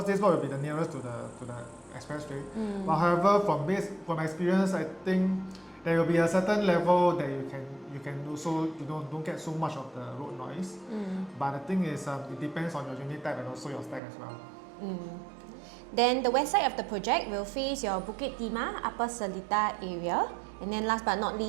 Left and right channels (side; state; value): left; drops out; at 14.0 s